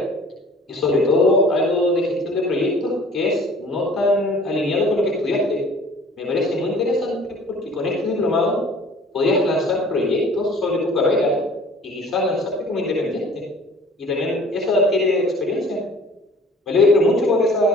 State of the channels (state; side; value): normal; both; correlation 0.50